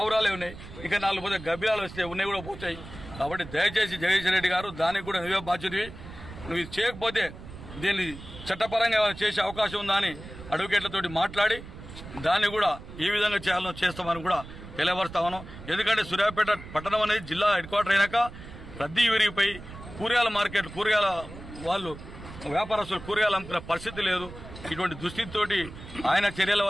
ఉన్నాయి, ఇంకా 4 పోతే గబ్బిలాలు వస్తే ఉన్నాయి కూడా పోతాయి. కాబట్టి దయచేసి జగదీశ్వర్ రెడ్డి గారు దానికి కూడా నువ్వే బాధ్యతవి. నువ్వు ఇది చేయకపోతే దీన్ని చట్టపరంగా చేసే అవకాశం ఉందా అని అడ్వకేట్లతోటి మాట్లాడి దాన్ని కూడా ఈ విధంగా చేయాలని చేస్తామని కూడా తెలియపరుస్తా ఉన్నాం. ఎందుకంటే సూర్యాపేట పట్టణం అనేది జిల్లా హెడ్ క్వార్టర్ అయినాక రద్దీ విరిగిపోయి కూరగాయల మార్కెట్, కూరగాయల వాళ్ళు వ్యాపారస్తులు కూరగాయలు అమ్ముకునే పరిస్థితి లేదు. ఇటువంటి దుస్థితితోటి ఆయన చర్యల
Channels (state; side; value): noise; right; rumble, 14 dB below the sound